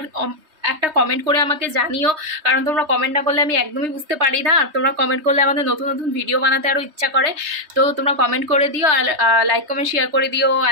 একটা কমেন্ট করে আমাকে জানিও, কারণ তোমরা কমেন্ট না করলে আমি একদমই বুঝতে পারি না, আর তোমরা কমেন্ট করলে আমাদের নতুন নতুন ভিডিও বানাতে আরও ইচ্ছা করে। তো তোমরা কমেন্ট করে দিও, আর লাইক কমেন্ট শেয়ার করে দিও।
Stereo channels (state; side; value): late; left; 3.2 ms